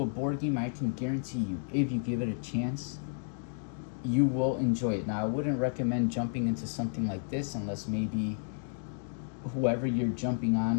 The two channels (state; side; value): silent; right; digital silence